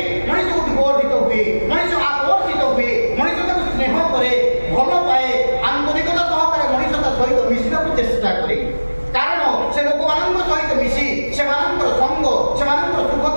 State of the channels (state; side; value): inverted; both; correlation -1.00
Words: ମଣିଷକୁ ବିବର୍ଦ୍ଧିତ ହୁଏ, ମଣିଷ ଆକର୍ଷିତ ହୁଏ, ମଣିଷ ତାକୁ ସ୍ନେହ କରେ, ଭଲ ପାଏ, ଆନ୍ତରିକତା ସହକାରେ ମଣିଷ ତା ସହିତ ମିଶିବାକୁ ଚେଷ୍ଟା କରେ। କାରଣ ସେ ଲୋକମାନଙ୍କ ସହିତ